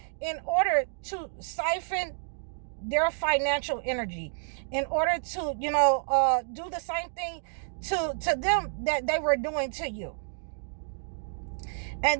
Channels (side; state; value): left; silent; digital silence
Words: in order to siphon their financial energy, in order to do the same thing to them that they were doing to you.